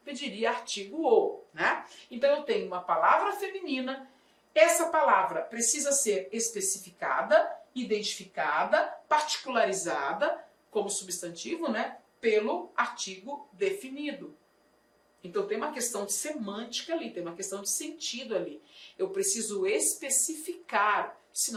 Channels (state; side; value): identical; both; correlation 1.00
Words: pediria artigo O, né? Então eu tenho uma palavra feminina, essa palavra precisa ser especificada, identificada, particularizada como substantivo, né? Pelo artigo definido. Então tem uma questão de semântica ali, tem uma questão de sentido ali. Eu preciso especificar,